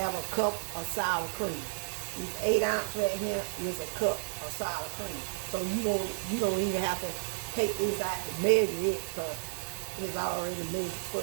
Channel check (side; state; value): left; silent; 56 dB below the other